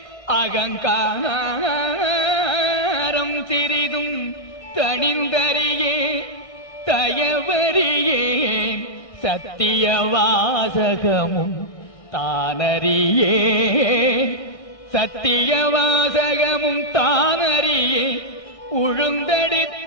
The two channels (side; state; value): right; late; 1.6 ms